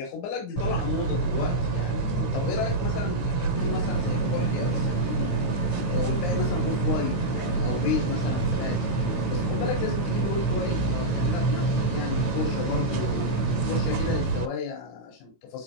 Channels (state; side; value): late; right; 16 ms